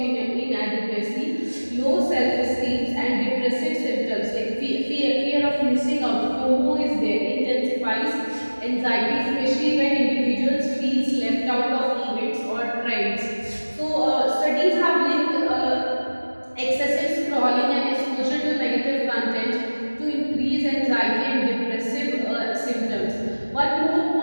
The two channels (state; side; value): inverted; both; correlation -1.00